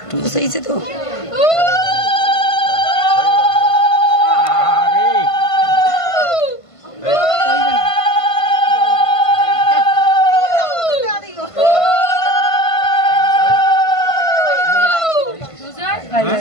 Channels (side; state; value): right; late; 1.5 ms